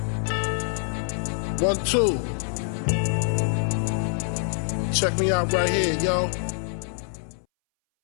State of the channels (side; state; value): right; silent; 62 dB below the other